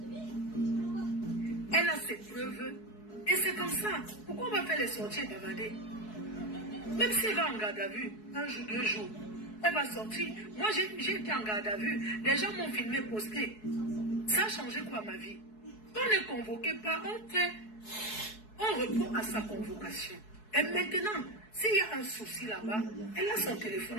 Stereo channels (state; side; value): late; right; 4.7 ms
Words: Elle a ses preuves. Et c'est comme ça. Pourquoi on va faire les sorties et bavarder? Même si elle va en garde à vue, un jour, 2 jours, elle va sortir. Moi, j'ai été en garde à vue. Les gens m'ont filmé, posté. Ça a changé quoi ma vie? On n'est convoqué pas, on répond à sa convocation. Et maintenant, s'il y a un souci là-bas, elle a son téléphone